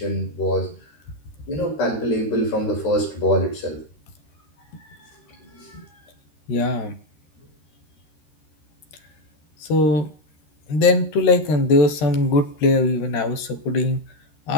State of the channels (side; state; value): right; late; 13 ms